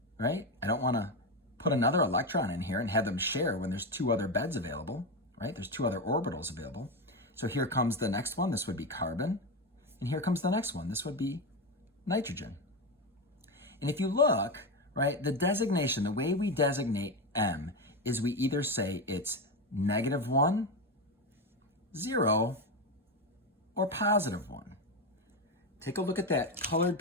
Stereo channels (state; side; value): normal; both; correlation 0.14